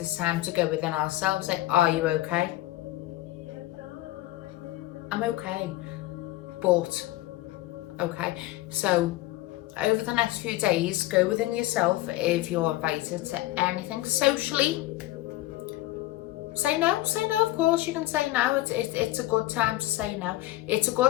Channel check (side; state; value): right; quieter; 16.8 dB